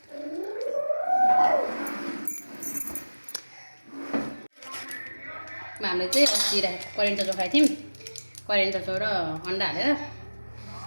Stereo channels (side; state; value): both; inverted; correlation -1.00